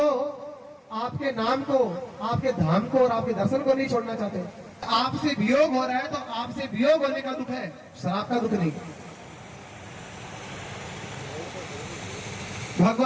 आपके नाम को, आपके धाम को और आपके दर्शन को नहीं छोड़ना चाहते। आपसे वियोग हो रहा है तो आपसे वियोग होने का दुख है, श्राप का दुख नहीं।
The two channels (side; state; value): both; identical; correlation 1.00